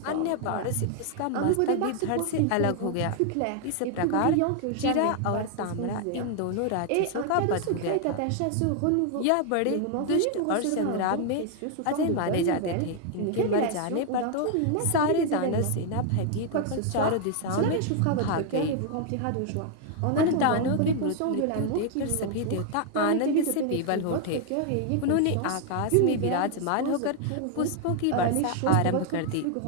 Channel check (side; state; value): both; different; correlation 0.00